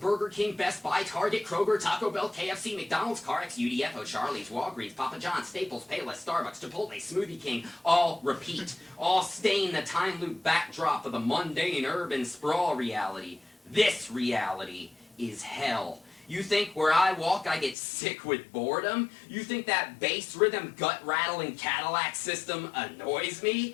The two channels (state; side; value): drops out; right; at 17.8 s